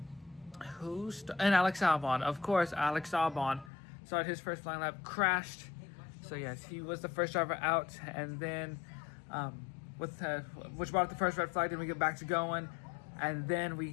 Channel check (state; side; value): drops out; right; at 3.7 s